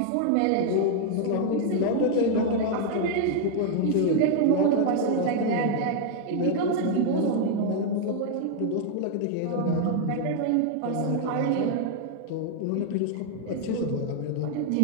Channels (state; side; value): different; both; correlation 0.00